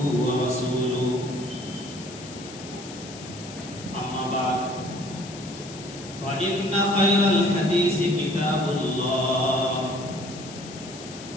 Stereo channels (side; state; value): left; noise; hiss, 15 dB below the sound